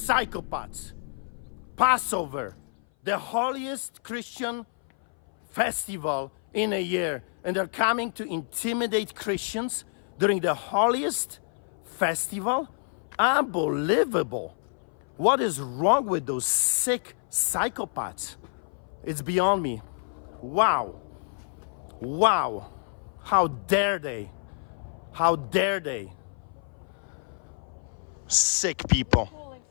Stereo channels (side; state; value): right; silent; 57 dB below the other